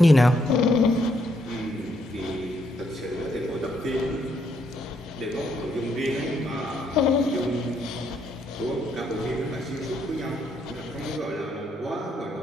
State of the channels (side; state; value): both; normal; correlation 0.74